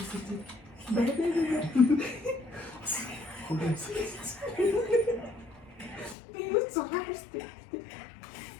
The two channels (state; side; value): drops out; right; at 6.2 s